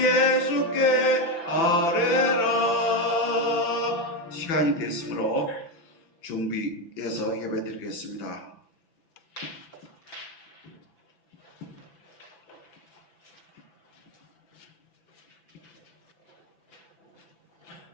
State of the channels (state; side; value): late; right; 6.0 ms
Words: 아뢰라. 시간이 됐으므로 준비해서 예배드리겠습니다.